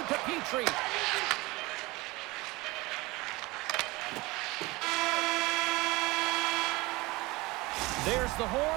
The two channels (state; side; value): quieter; left; 22.3 dB